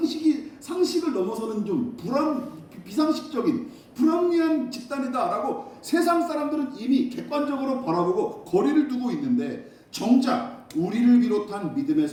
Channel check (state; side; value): identical; both; correlation 1.00